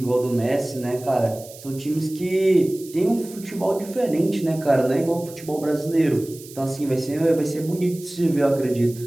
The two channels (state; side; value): noise; right; hiss, 18 dB below the sound